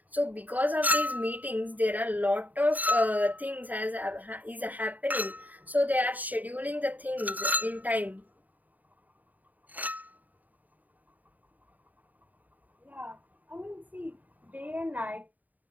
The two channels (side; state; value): left; late; 0.080 ms